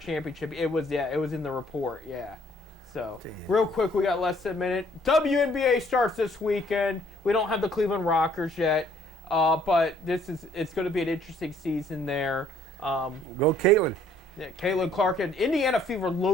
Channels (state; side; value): normal; both; correlation 0.63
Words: championship. It was in the report. Yeah. So Damn. real quick, we got less than a minute. WNBA starts this weekend. We don't have the Cleveland Rockers yet, but it's going to be an interesting season there. Go Caitlin. Yeah, Caitlin Clark and Indiana Fever